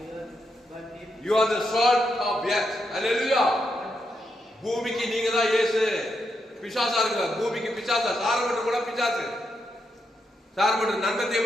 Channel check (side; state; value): both; normal; correlation 0.82